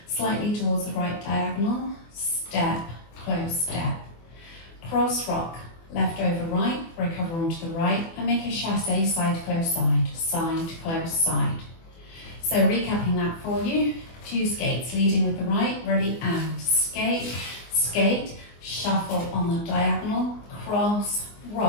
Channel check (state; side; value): late; right; 24 ms